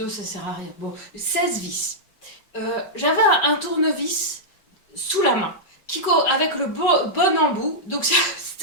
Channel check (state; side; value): late; right; 5.4 ms